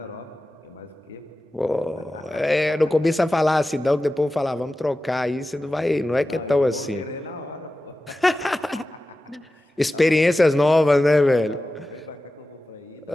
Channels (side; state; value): both; normal; correlation 0.94